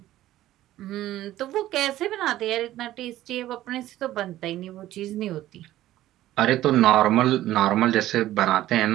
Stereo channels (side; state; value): left; quieter; 14.4 dB